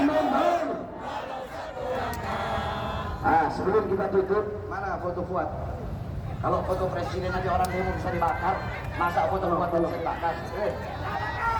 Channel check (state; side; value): identical; both; correlation 1.00